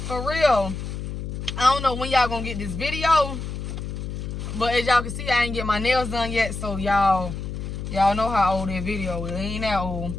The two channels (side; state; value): left; noise; hum, 6 dB below the sound